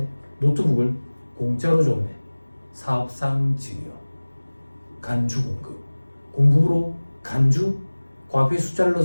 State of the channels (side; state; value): both; inverted; correlation -1.00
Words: 노트북을 공짜로 줬네. 사업상 증여. 간주 공급. 공급으로 간주 과표의 숫자를